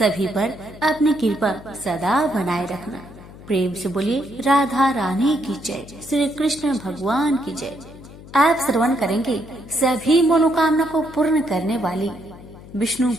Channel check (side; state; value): left; noise; hum, 18 dB below the sound